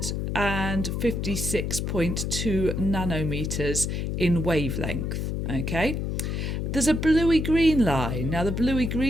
nanometers in wavelength. Okay. There's a bluey-green line. Now, the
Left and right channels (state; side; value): noise; left; hum, 2 dB below the sound